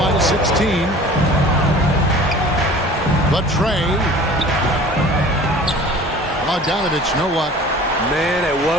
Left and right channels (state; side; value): normal; both; correlation 0.44